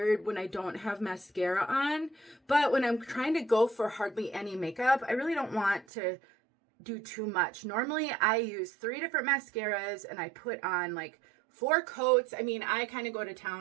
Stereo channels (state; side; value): drops out; left; at 5.9 s